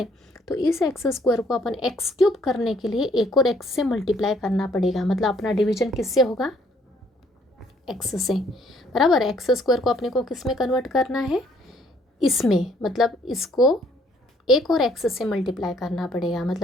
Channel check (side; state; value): both; normal; correlation 0.64